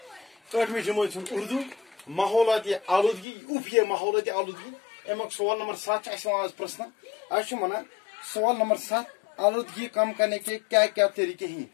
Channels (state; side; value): drops out; right; at 3.2 s